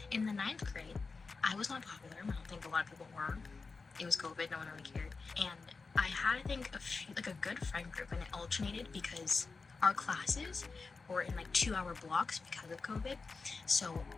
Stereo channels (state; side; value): quieter; right; 4.3 dB